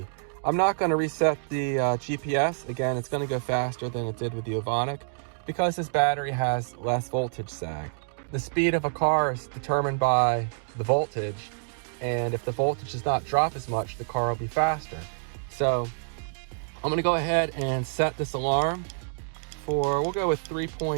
I'm not going to reset the GPS. Again, it's going to go faster than it did with the Ovonic, because this battery has less voltage sag. The speed of a car is determined by the voltage, and if the voltage does not drop as much, the car will be faster. So I'm going to go ahead and set this alarm for, we'll go with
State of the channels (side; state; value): left; silent; digital silence